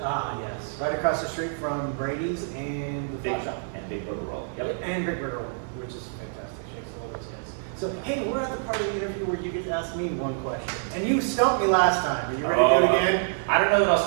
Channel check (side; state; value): left; silent; 57 dB below the other